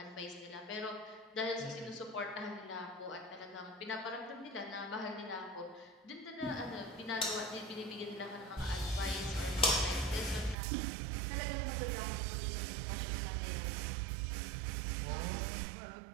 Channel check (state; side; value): drops out; left; at 10.6 s